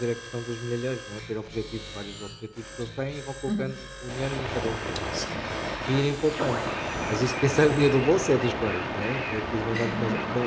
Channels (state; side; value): identical; both; correlation 1.00